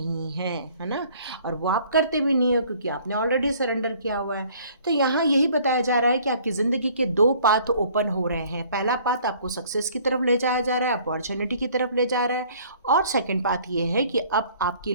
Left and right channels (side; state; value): both; inverted; correlation -0.56